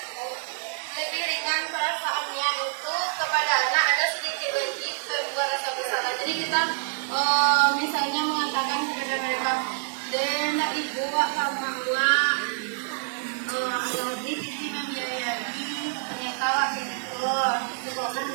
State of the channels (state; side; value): silent; left; 60 dB below the other